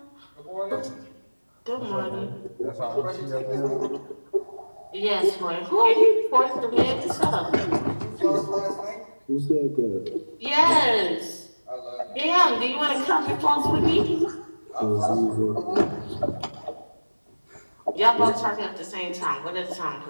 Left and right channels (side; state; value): both; inverted; correlation -1.00